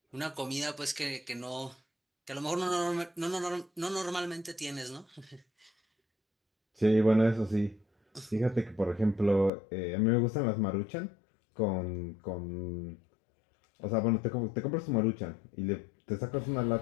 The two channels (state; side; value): drops out; right; at 9.5 s